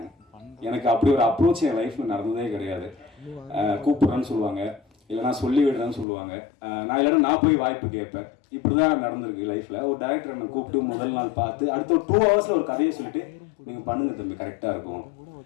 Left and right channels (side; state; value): right; drops out; at 6.1 s